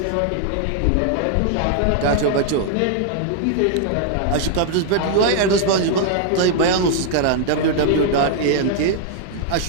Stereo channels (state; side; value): different; both; correlation -0.01